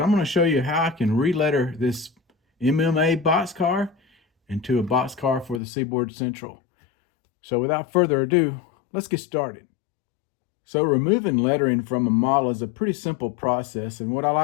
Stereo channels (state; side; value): drops out; right; at 5.6 s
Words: going to show you how I can re-letter this MMA boxcar into a boxcar for the Seaboard Central. So without further ado, let's get started. So removing lettering from a model is a pretty simple process, and what I